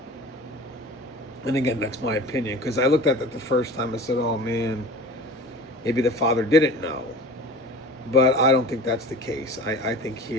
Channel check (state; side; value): normal; both; correlation 0.38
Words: again, that's my opinion, because I looked at that the first time. I said, "Oh man, maybe the father didn't know." But I don't think that's the case. I think